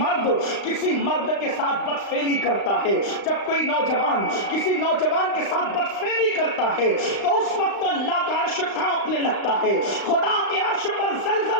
کسی مرد کے ساتھ بدفعلی کرتا ہے، جب کوئی نوجوان کسی نوجوان کے ساتھ بدفعلی کرتا ہے تو اس وقت اللہ کا عرش کانپنے لگتا ہے، خدا کے عرش پر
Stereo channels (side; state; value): right; late; 35 ms